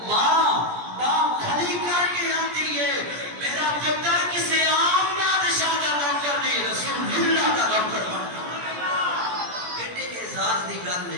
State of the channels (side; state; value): left; late; 17 ms